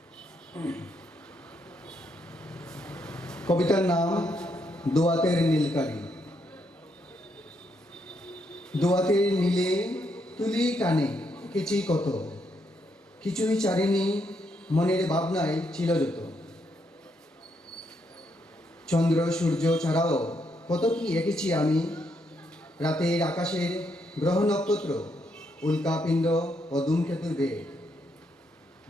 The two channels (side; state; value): both; normal; correlation 0.77